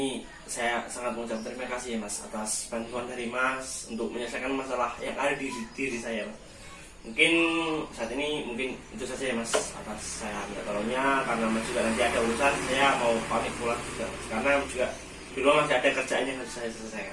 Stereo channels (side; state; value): both; identical; correlation 1.00